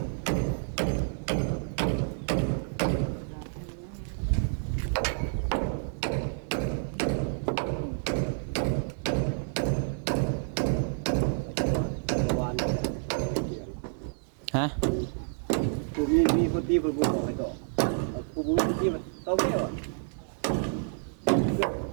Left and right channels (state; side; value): silent; left; 58 dB below the other